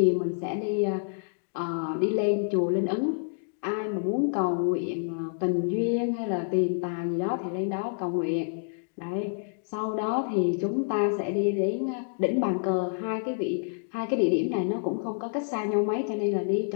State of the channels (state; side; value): silent; right; digital silence